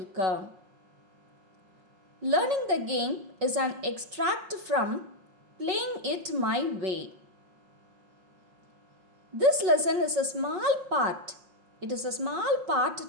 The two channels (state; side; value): late; left; 5.5 ms